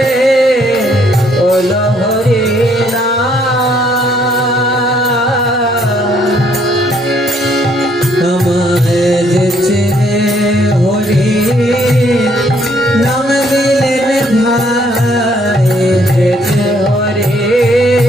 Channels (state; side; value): normal; both; correlation 0.67